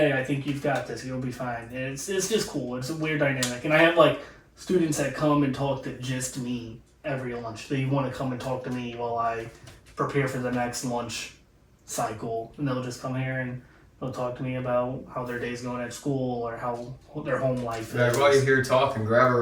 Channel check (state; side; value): identical; both; correlation 1.00